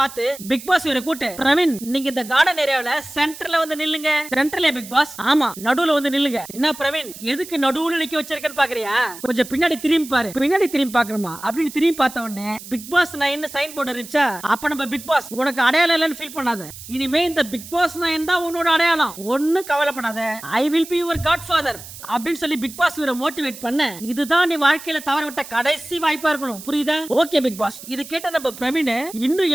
பிக் பாஸ் இவரை கூட்டு, பிரவீன் நீங்க இந்த கார்டன் ஏரியாவுல சென்டர்ல வந்து நில்லுங்க. சென்டர்ல பிக் பாஸ், ஆமா நடுவுல வந்து நில்லுங்க. என்ன பிரவீன் எதுக்கு நடுவுல நிக்க வச்சிருக்கேன்னு பாக்குறியா, கொஞ்சம் பின்னாடி திரும்பி பாரு. பின்னாடி திரும்பி பாக்கணுமா அப்படின்னு திரும்பி பார்த்த உடனே பிக் பாஸ் நான் என்ன சைன் போர்டு இருந்துச்சா. அப்ப நம்ம பிக் பாஸ் உனக்கு அடையாளம் இல்லைன்னு ஃபீல் பண்ணாத. இனிமே இந்த பிக் பாஸ் நான் தான் உன்னோட அடையாளம், ஒன்னும் கவலைப்படாத. I will be your godfather அப்படின்னு சொல்லி பிக் பாஸ் இவரை மோட்டிவேட் பண்ண, இதுதான் நீ வாழ்க்கையில தவற விட்ட கடைசி வாய்ப்பா இருக்கணும், புரியுதா. Okay Bigg Boss. இது கேட்ட நம்ம பிரவீன் இன்னும்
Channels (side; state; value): right; noise; hiss, 15 dB below the sound